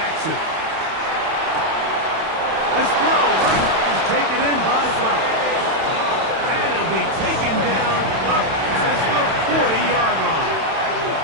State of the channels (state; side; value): late; left; 31 ms